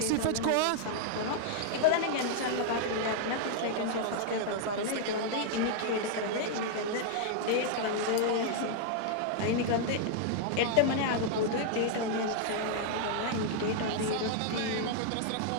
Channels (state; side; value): different; both; correlation -0.01